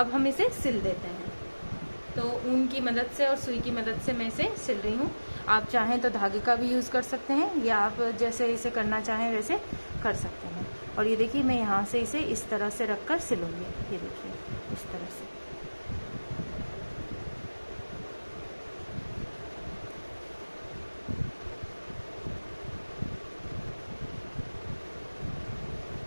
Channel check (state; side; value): inverted; both; correlation -1.00